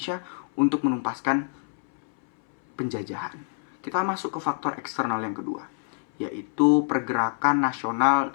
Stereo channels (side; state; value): right; silent; 61 dB below the other